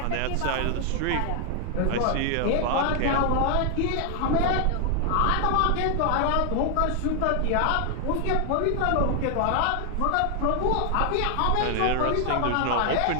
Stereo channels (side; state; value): both; different; correlation 0.00